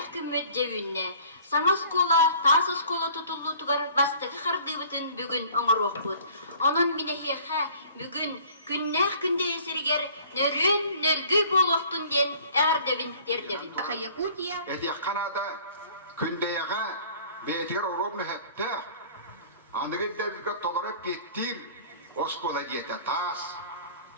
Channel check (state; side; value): inverted; both; correlation -0.51